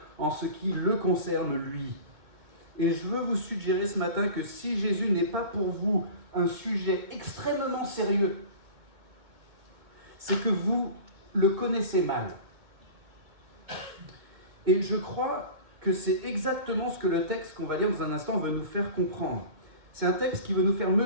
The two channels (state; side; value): late; left; 2.2 ms